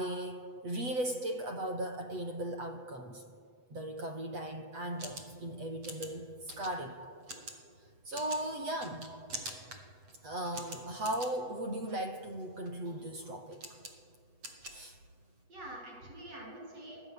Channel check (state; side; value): late; left; 8.0 ms